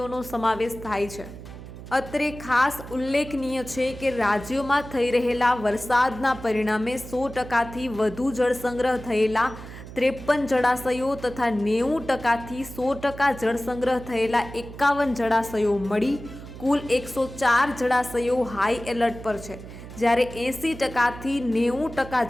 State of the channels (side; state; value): right; noise; hum, 14 dB below the sound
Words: સમાવેશ થાય છે. અત્રે ખાસ ઉલ્લેખનીય છે કે રાજ્યોમાં થઈ રહેલા વરસાદના પરિણામે 100%થી વધુ જળ સંગ્રહ થયેલા 53 જળાશયો તથા 90%થી 100% જળ સંગ્રહ થયેલા 51 જળાશયો મળી કુલ 104 જળાશયો હાઈ એલર્ટ પર છે, જ્યારે 80%થી